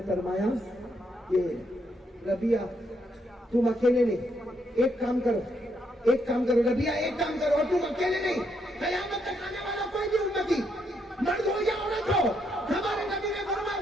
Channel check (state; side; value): normal; both; correlation 0.76